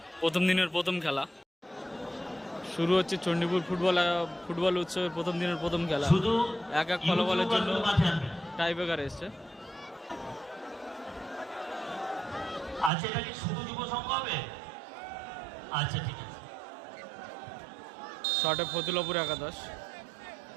প্রথম দিনের প্রথম খেলা শুরু হচ্ছে চণ্ডীপুর ফুটবল উৎসবের প্রথম দিনের প্রথম খেলা। এক ফলাফলের জন্য টাই ব্রেকার এসছে। আচ্ছা, এটা কি শুধু যুব সংঘ হবে? আচ্ছা, ঠিক আছে। শটে ফতুল্লাপুর একাদশ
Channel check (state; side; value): drops out; left; at 12.9 s